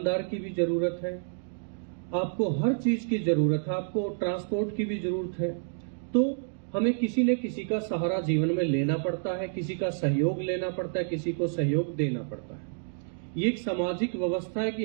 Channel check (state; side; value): silent; left; digital silence